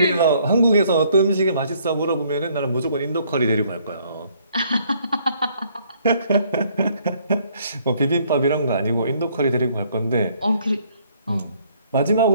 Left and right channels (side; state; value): both; inverted; correlation -0.64